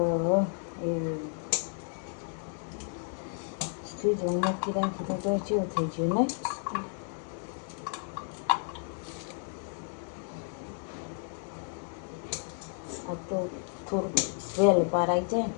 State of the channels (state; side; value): silent; right; 56 dB below the other